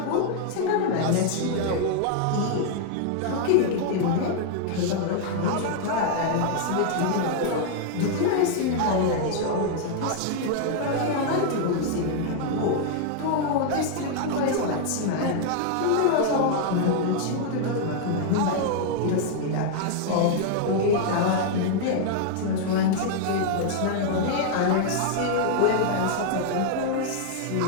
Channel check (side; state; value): both; different; correlation 0.00